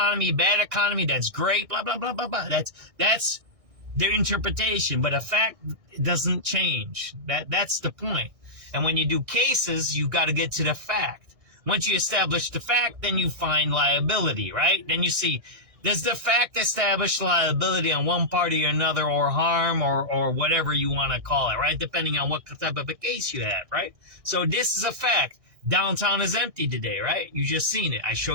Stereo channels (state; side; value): late; left; 1.6 ms